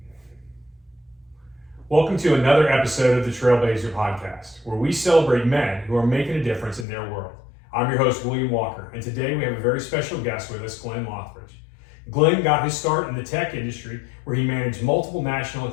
Welcome to another episode of the Trailblazer Podcast, where we celebrate men who are making a difference in their world. I'm your host, William Walker, and today we have a very special guest with us, Glenn Loighridge. Glenn got his start in the tech industry where he managed multiple national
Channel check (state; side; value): drops out; right; at 6.9 s